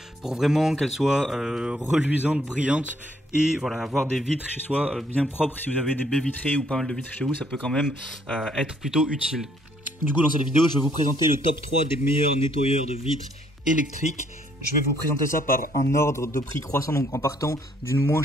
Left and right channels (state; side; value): normal; both; correlation 0.67